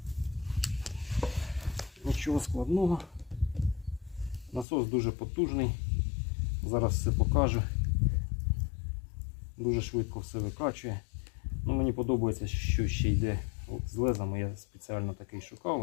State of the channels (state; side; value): drops out; right; at 4.7 s